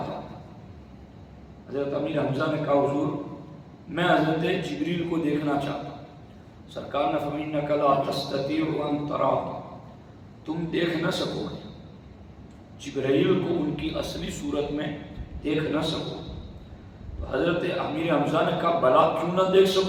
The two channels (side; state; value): both; identical; correlation 1.00